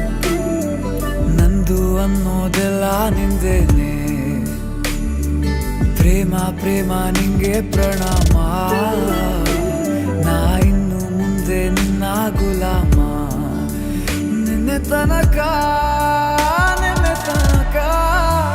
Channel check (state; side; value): identical; both; correlation 1.00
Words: ನಂದು ಅನ್ನೋದೆಲ್ಲ ನಿಂದೇನೆ. ಪ್ರೇಮ ಪ್ರೇಮ ನಿಂಗೆ ಪ್ರಣಾಮ, ನಾ ಇನ್ನು ಮುಂದೆ ನಿನ್ನ ಗುಲಾಮ. ನಿನ್ನೆ ತನಕ